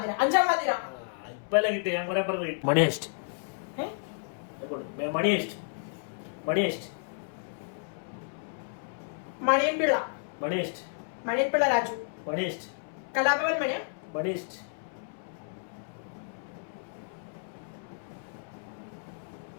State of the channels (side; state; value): right; silent; 57 dB below the other